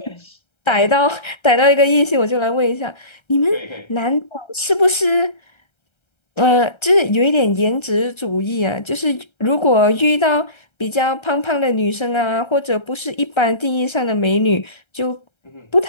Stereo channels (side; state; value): right; late; 1.3 ms